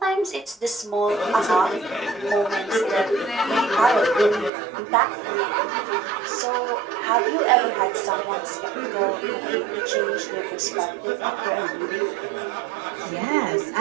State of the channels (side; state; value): left; drops out; at 4.5 s